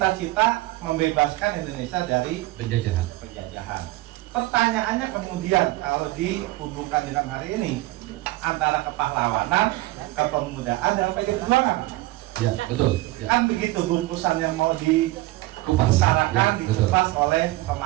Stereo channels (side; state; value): left; quieter; 18.9 dB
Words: membebaskan Indonesia dari penjajahan. Pertanyaannya kemudian kalau dihubungkan dengan hari ini antara kepahlawanan, kepemudaan, dan PDI Perjuangan. Ya, betul. Ya. Kan begitu bungkusan yang mau dibesarkan, dikupas oleh